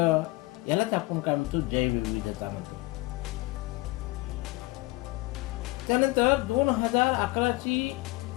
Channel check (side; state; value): right; quieter; 21.0 dB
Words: यालाच आपण काय म्हणतो, जैवविविधता म्हणतो. त्यानंतर 2011 ची